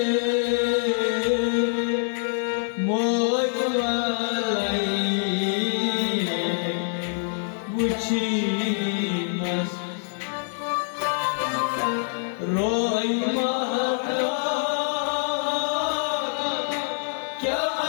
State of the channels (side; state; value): right; silent; digital silence